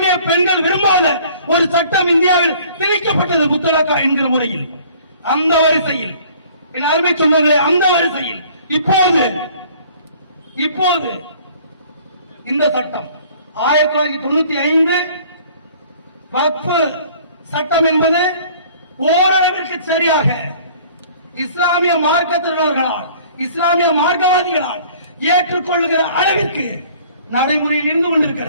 பெண்கள் விரும்பாத ஒரு சட்டம் இந்தியாவில் திணிக்கப்பட்டது முத்தலாக்கா என்கிற முறையில். அந்த வரிசையில் என் அருமை சொந்தங்களே, அந்த வரிசையில் இப்போது இந்த சட்டம் 1995 வக்ஃப் சட்டம் என்பது ஓரளவிற்கு சரியாக இஸ்லாமிய மார்க்கத்தினர்களால், இஸ்லாமிய மார்க்கவாதிகளால் ஏற்றுக்கொள்ளுகிற அளவிற்கு நடைமுறையில் இருந்து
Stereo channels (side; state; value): both; inverted; correlation -0.53